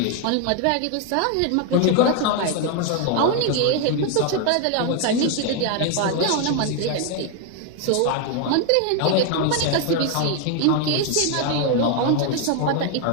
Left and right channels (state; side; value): different; both; correlation 0.01